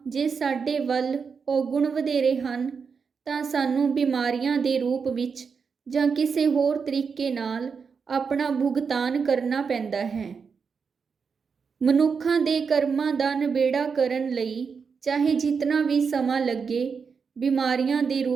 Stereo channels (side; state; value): left; quieter; 5.7 dB